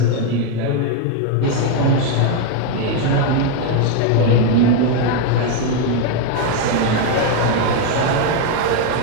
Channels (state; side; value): different; both; correlation 0.01